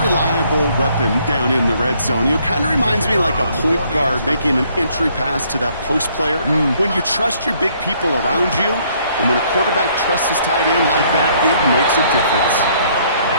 reliable weapon down in the red zone. You know, kind of reminds me like a point guard making an entry pass to that post player. When you trust your big people around you, and when a quarterback trusts his tight end like that, it makes a difference.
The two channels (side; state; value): both; inverted; correlation -0.65